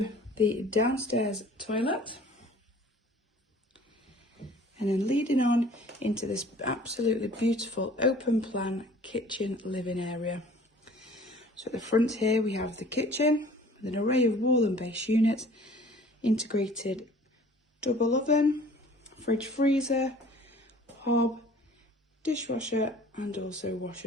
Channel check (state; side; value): normal; both; correlation 0.50